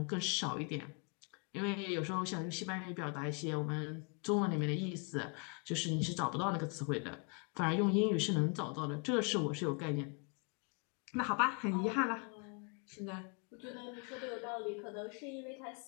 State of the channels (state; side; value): quieter; right; 35.4 dB